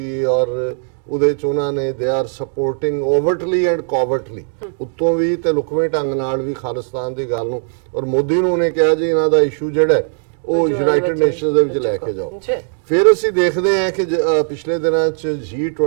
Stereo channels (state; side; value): silent; left; digital silence